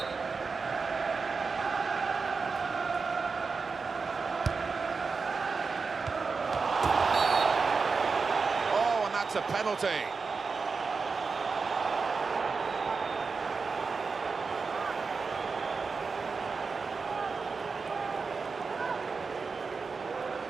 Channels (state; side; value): quieter; left; 4.7 dB